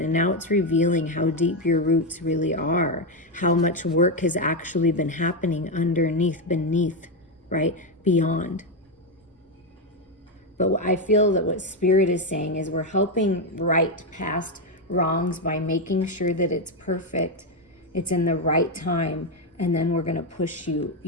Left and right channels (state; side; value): normal; both; correlation 0.06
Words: now it's revealing how deep your roots really are, how much work has actually been happening underneath, beneath, right? Beyond. But I feel that what Spirit is saying is we're helping right past wrongs by making sure that it's perfect, it's in the right time, and then we're going to push